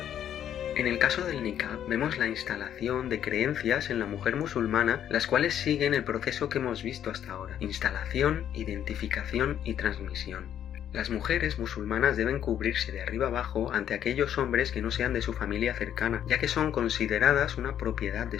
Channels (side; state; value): right; quieter; 10.1 dB